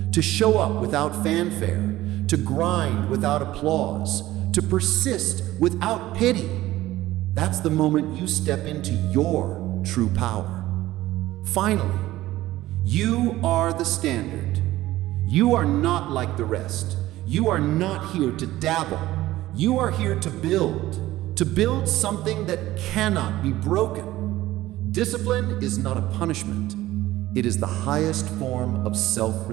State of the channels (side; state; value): left; quieter; 16.0 dB